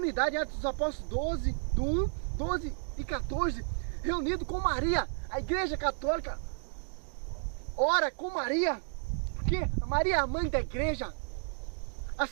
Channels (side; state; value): left; silent; digital silence